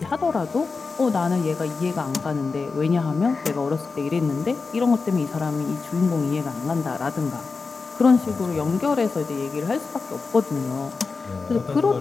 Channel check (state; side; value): quieter; right; 4.5 dB